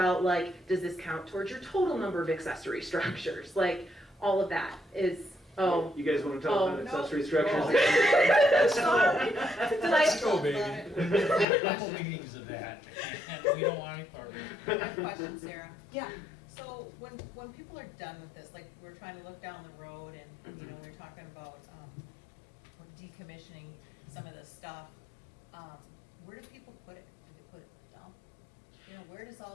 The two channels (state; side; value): drops out; right; at 11.5 s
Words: like, does this count towards your total number of accessory structures? Like, all of that is, oh. You guys want to talk about accessory structures? Sorry. Let's go, baby. A couple meetings of that, and we don't want any part of it. I have a question, Sarah. Yeah. So when people are done with this, like we're trying to look down the road and, you know, we're talking about decommissioning some of this stuff, where do people put it? Do they put it in the dump? You know, where does